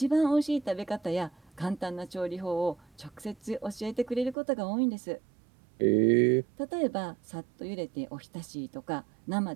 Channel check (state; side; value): drops out; left; at 4.4 s